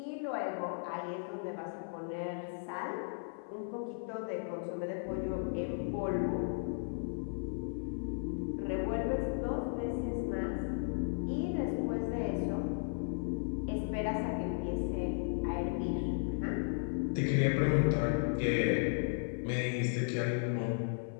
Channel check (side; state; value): right; silent; 54 dB below the other